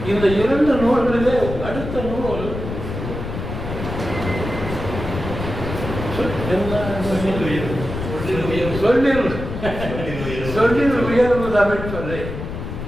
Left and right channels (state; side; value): noise; left; rumble, 7 dB below the sound